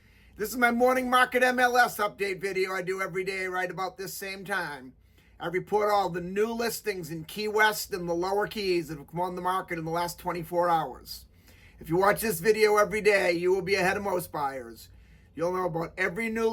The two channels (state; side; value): identical; both; correlation 1.00